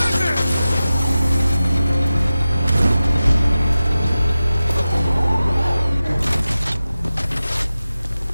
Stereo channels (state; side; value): inverted; both; correlation -0.94